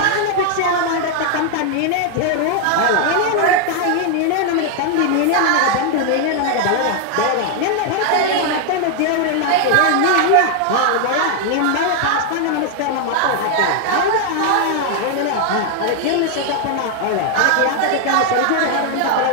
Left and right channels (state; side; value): different; both; correlation 0.00